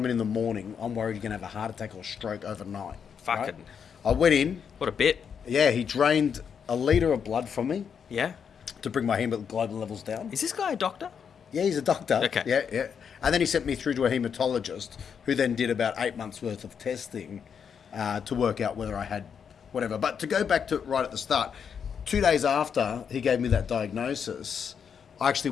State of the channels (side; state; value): right; quieter; 7.1 dB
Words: in the morning, I'm worried you're going to have a heart attack or stroke overnight. Fucking. Right? I went in. What a bit. Yeah, he drained a litre of blood from me Yeah. to bring my hemoglobin levels down. Is this guy a doctor? Yeah, he's a doctor. Okay. Yeah. And then he sent me through to a hematologist who then did about 8 months' worth of testing to work out whether I had whatever. But to go back to right at the start, 2 days after he gave me that diagnosis, I actually